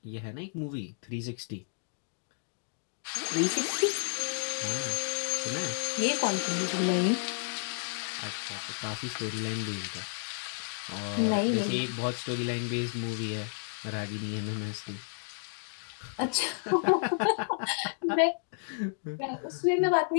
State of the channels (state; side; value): silent; right; digital silence